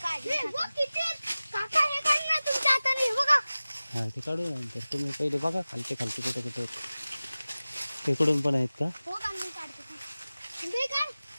काढले काका हे काढ ना तुमच्या हाताने. हे बघा हा ते काढू नंतर. तुम्ही पहिले बघा खालचे कुठे कुठे तिकडून पण आहेत का? हो का मी काढते. हे काढ.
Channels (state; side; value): inverted; both; correlation -0.97